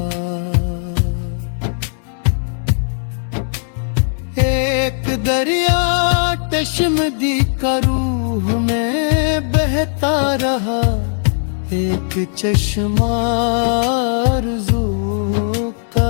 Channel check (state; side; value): silent; right; digital silence